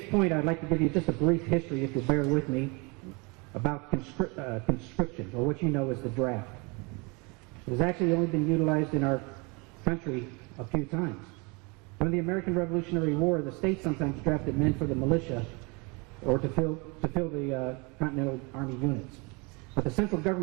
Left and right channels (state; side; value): quieter; left; 29.4 dB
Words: point, I'd like to give you just a brief history, if you'll bear with me, about conscription, or what you know as the draft. It has actually only been utilized in our country a few times. During the American Revolutionary War, the states sometimes drafted men for the militia or to fill the Continental Army units. But the central